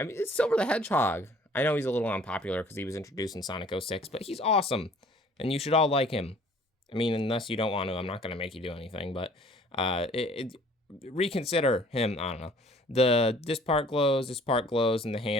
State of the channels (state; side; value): normal; both; correlation 0.54